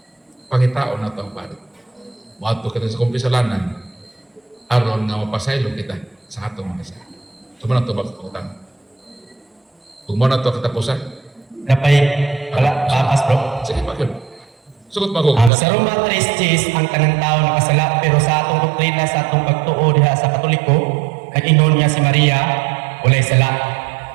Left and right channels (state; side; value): drops out; left; at 15.5 s